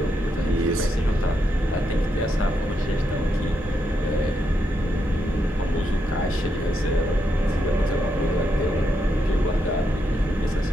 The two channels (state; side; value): normal; both; correlation 0.81